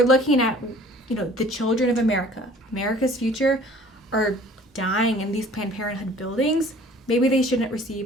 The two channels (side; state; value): both; normal; correlation 0.51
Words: looking at, the children of America's future are dying in these Planned Parenthood buildings, maybe they shouldn't